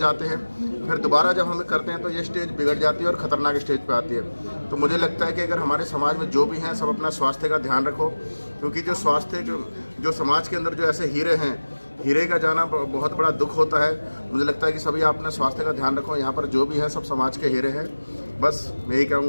हैं, फिर दोबारा जब हम करते हैं तो ये स्टेज बिगड़ जाती है और ख़तरनाक स्टेज पे आती है। तो मुझे लगता है कि अगर हमारे समाज में जो भी हैं सब अपना स्वास्थ्य का ध्यान रखो, क्योंकि जो स्वास्थ्य जो समाज के अंदर जो ऐसे हीरे हैं, हीरे का जाना बहुत बड़ा दुख होता है। मुझे लगता है कि सभी आप अपने स्वास्थ्य का ध्यान रखो। यहाँ पर जो भी है सब समाज के हीरे हैं। बस मैं यही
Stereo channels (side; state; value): both; inverted; correlation -1.00